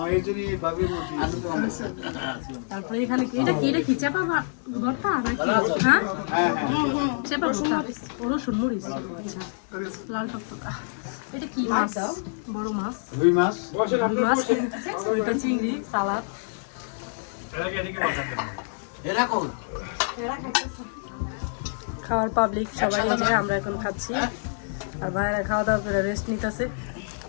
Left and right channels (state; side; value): silent; right; digital silence